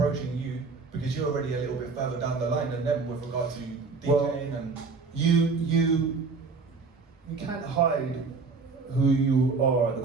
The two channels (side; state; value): left; quieter; 4.5 dB